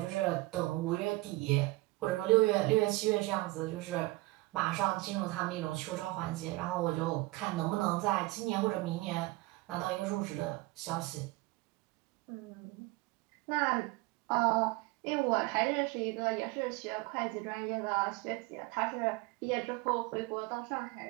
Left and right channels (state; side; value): quieter; left; 21.2 dB